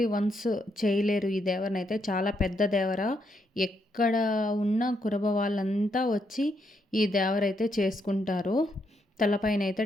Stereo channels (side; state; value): both; normal; correlation 0.78